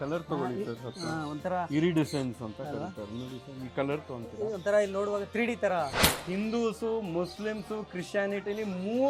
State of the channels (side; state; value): both; identical; correlation 1.00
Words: ತಗೊಳ್ಳಿ ಒಂಥರ ಇರಿಡಿಸೆನ್ಸ್ ಅಂತ ಕರೀತಾರೆ. ನೋಡಿ ಸರ್, ಈ ಕಲರ್ ತೊಗೊಂತೀವಿ. ಒಂಥರ ಇಲ್ಲಿ ನೋಡುವಾಗ 3D ತರ. ಹಿಂದೂಸು, ಮುಸ್ಲಿಮ್ಸು, ಕ್ರಿಶ್ಚಿಯಾನಿಟಿಲಿ